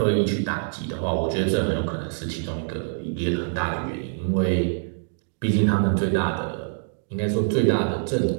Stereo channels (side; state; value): left; silent; digital silence